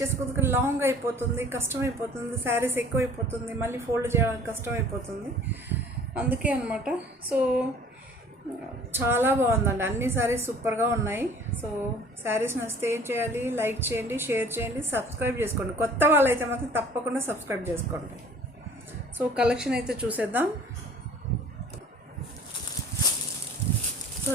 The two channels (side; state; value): both; normal; correlation 0.50